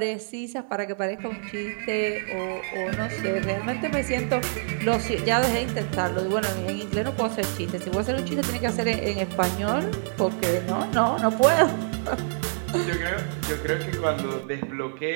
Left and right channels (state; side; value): silent; left; digital silence